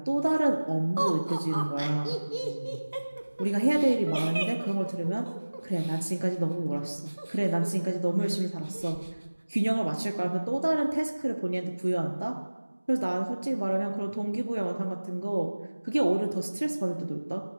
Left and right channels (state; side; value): inverted; both; correlation -1.00